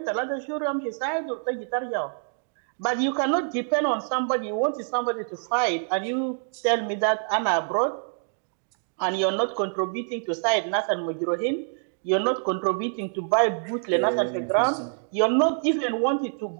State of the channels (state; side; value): silent; left; digital silence